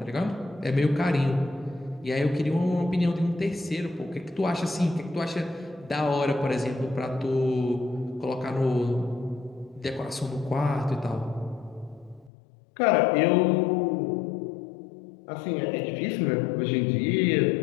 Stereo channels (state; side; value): drops out; right; at 12.3 s